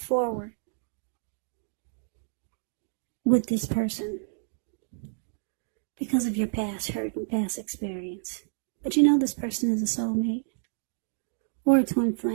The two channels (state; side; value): silent; left; digital silence